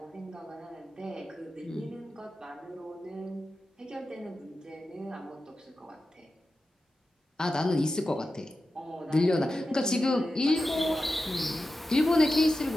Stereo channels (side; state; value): both; normal; correlation 0.92